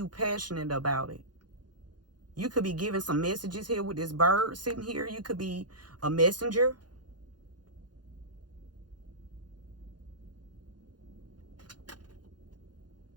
passionate about it. You could be giving some messages here with this bird sitting here. You could be a messenger.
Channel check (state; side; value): late; left; 0.70 ms